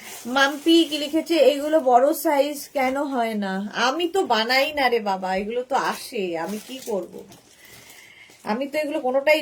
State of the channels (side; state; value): both; identical; correlation 1.00